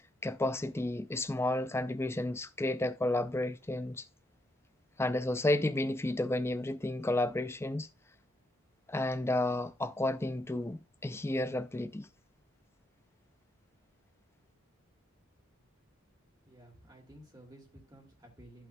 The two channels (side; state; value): both; normal; correlation 0.79